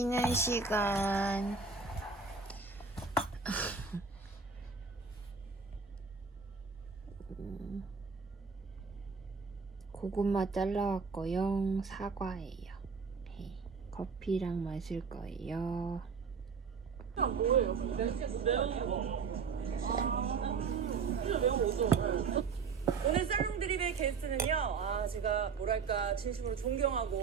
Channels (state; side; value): quieter; left; 5.3 dB